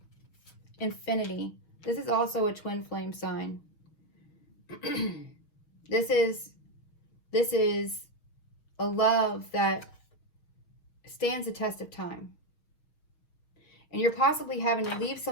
Infinity. This is also a twin flame sign. This is a love that stands the test of time. And you're possibly having to leave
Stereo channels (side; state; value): right; late; 6.4 ms